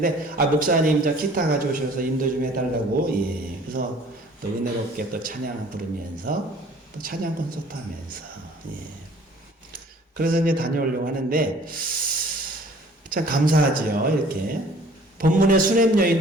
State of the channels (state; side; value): normal; both; correlation 0.52